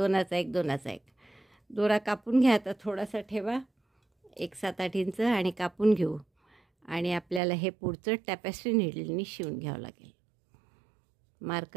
एक. दोरा कापून घ्या. आता थोडासा ठेवा, 1 7-8 इंच, आणि कापून घेऊ. आणि आपल्याला हे पुढचं टॅपेस्ट्री नीडलनी शिवून घ्यावं लागेल.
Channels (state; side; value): drops out; left; at 7.4 s